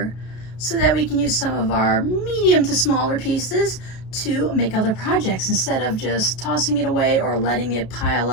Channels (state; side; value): late; right; 33 ms